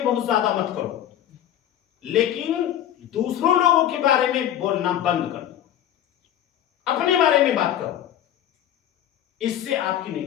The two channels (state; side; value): quieter; right; 11.2 dB